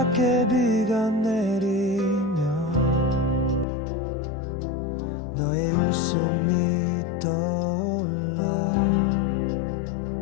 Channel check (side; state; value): right; drops out; at 3.7 s